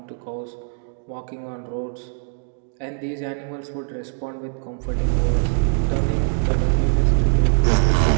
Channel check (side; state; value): left; silent; digital silence